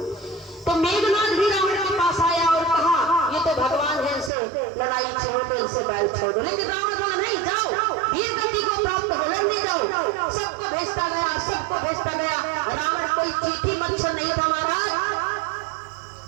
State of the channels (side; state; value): left; drops out; at 4.3 s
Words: तो मेघनाथ भी रावण के पास आया और कहा ये तो भगवान है, इनसे लड़ाई छोड़ दो, इनसे बैल छोड़ दो। लेकिन रावण बोला नहीं जाओ, वीर गति को प्राप्त हो लड़ने जाओ। सबको भेजता गया, सबको भेजता गया। रावण कोई चीठी मच्छर नहीं था महाराज।